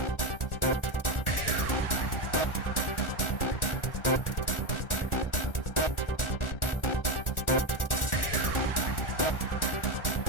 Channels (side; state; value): right; late; 1.4 ms